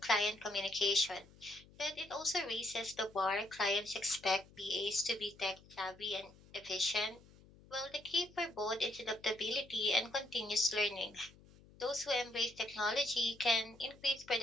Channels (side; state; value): left; noise; hum, 24 dB below the sound